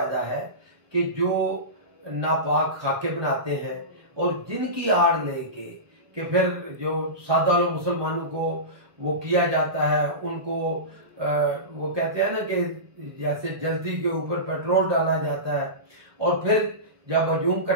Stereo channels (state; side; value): late; left; 1.2 ms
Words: है कि जो नापाक खाके बनाते हैं और जिनकी आड़ लेके कि फिर जो सादा लोग मुसलमानों को वो किया जाता है, उनको वो कहते हैं ना कि जैसे जल्दी के ऊपर पेट्रोल डाला जाता है और फिर जब हजूम